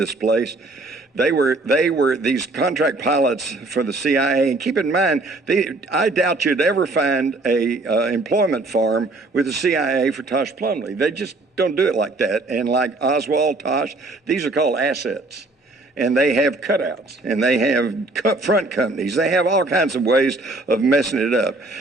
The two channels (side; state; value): left; quieter; 3.1 dB